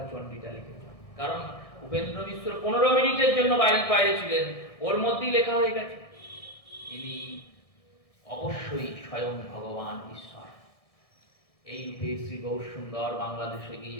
চণ্ডীটা লিখেছেন। কারণ উপেন্দ্র মিশ্র 15 মিনিটের জন্য বাইরে ছিলেন, ওর মধ্যেই লেখা হয়ে গেছে। ইনি অবশ্যই স্বয়ং ভগবান ঈশ্বর। এই রূপে শ্রী গৌরসুন্দর বাংলাদেশে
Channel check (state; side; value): late; right; 1.6 ms